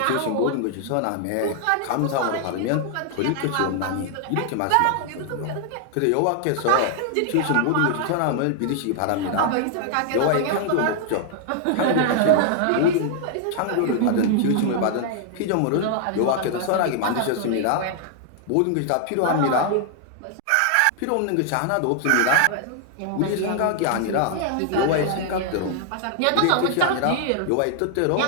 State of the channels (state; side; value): different; both; correlation 0.00